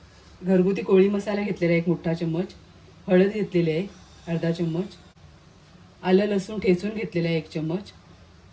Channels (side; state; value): both; identical; correlation 1.00